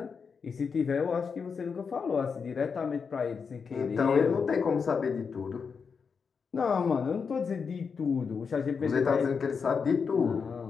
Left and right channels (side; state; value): right; quieter; 5.7 dB